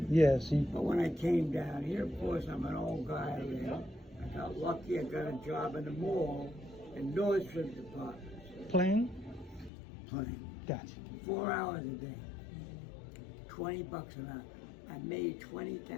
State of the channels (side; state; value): right; drops out; at 9.7 s